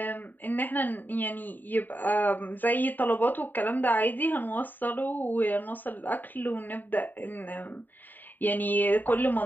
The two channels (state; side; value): late; right; 0.089 ms